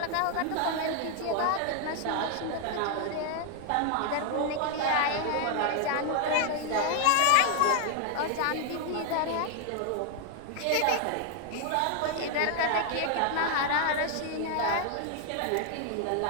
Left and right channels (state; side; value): different; both; correlation 0.00